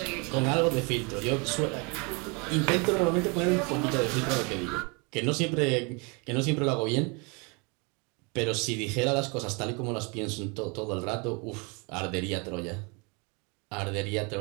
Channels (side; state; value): left; quieter; 31.4 dB